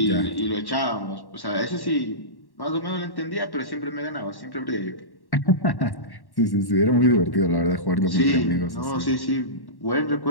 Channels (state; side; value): late; right; 1.1 ms